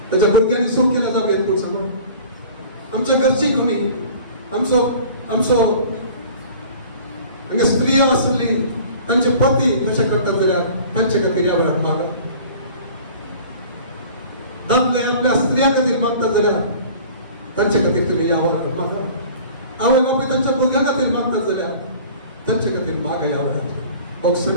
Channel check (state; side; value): inverted; both; correlation -0.45